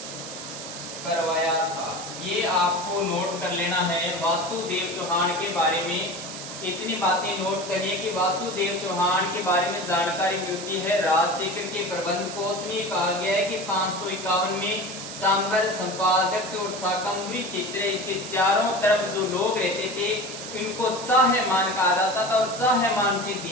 करवाया था। ये आपको नोट कर लेना है। वासुदेव चौहान के बारे में इतनी बातें नोट करिए कि वासुदेव चौहान के बारे में जानकारी मिलती है। राजशेखर के प्रबंध कोश में कहा गया है कि 551 में सांबर, संपादक और शाकंभरी चित्र, इसके चारों तरफ जो लोग रहते थे इनको चाहमान कहा जाता था और चाहमान से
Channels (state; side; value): noise; right; hiss, 10 dB below the sound